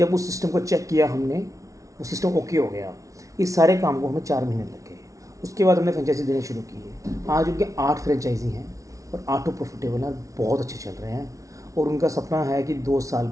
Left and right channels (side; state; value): left; late; 0.16 ms